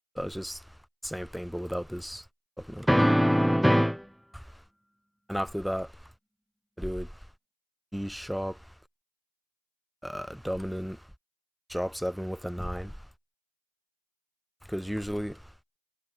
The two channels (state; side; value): identical; both; correlation 1.00